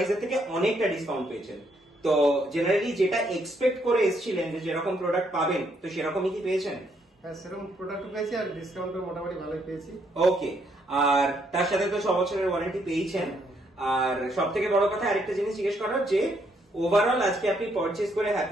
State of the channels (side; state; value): both; normal; correlation 0.72